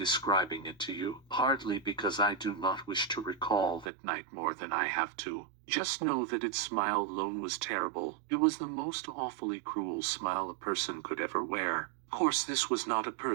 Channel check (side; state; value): left; drops out; at 3.9 s